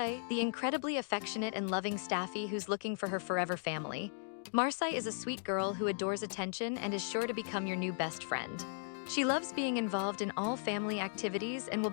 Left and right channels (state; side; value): silent; right; digital silence